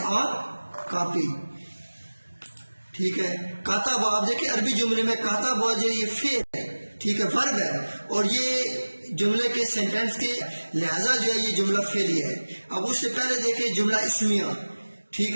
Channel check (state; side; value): inverted; both; correlation -1.00